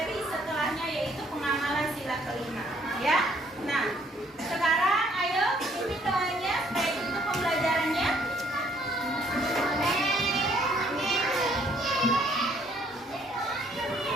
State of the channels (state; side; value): normal; both; correlation 0.64